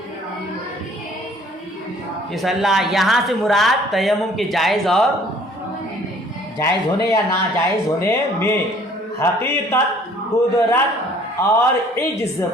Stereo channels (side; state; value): both; normal; correlation 0.56